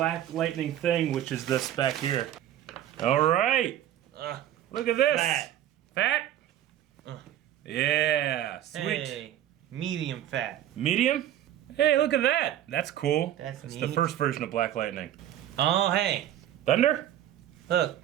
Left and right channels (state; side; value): quieter; left; 11.9 dB